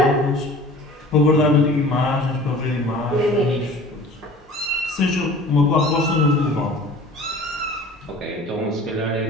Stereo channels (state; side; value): normal; both; correlation 0.44